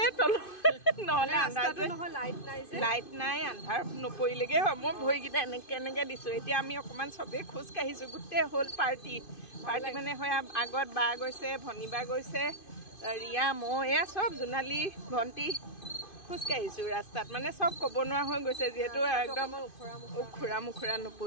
তল নহলে আন্ধাৰ নহয় লাইট নাই আন্ধাৰ নপৰিলেগে হয় মই ভৰিকেইটা এনেকে দিছো এতিয়া আমি অকমান চবে খোজ কাঢ়িছো গুটে হ'ল পাৰ্টি মানে হয় আগত বা গৈছে ভনিবা গৈছে ৰিয়া মই এয়া চব জোনালী ভণ্টি খোজ কাঢ়িছো ৰাস্তাত মানে সব ক'ব নোৱাৰা হৈ গৈছে যেহেতু একদম উখুৰা মুখুৰা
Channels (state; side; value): late; right; 2.5 ms